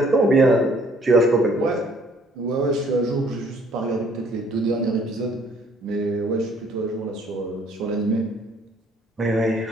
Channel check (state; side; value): normal; both; correlation 0.61